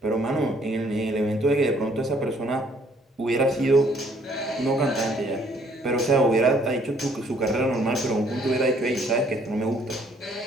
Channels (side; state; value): both; normal; correlation 0.63